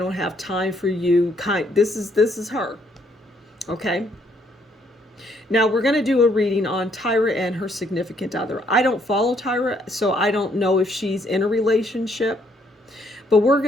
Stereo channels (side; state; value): both; normal; correlation 0.69